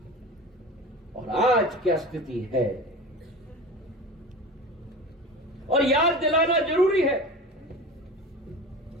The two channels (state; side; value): normal; both; correlation 0.32